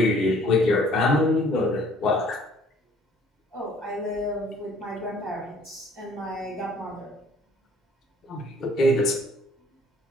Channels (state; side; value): normal; both; correlation 0.57